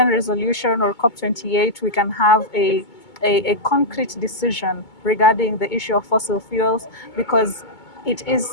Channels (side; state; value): right; late; 2.2 ms